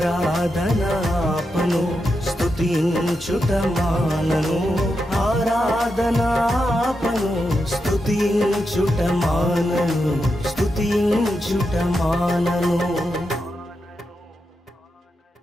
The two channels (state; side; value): normal; both; correlation 0.86